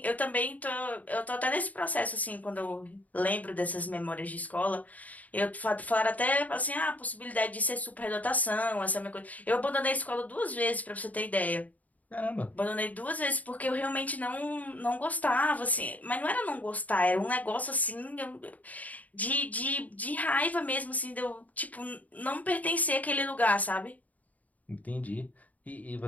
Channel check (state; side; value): late; right; 0.074 ms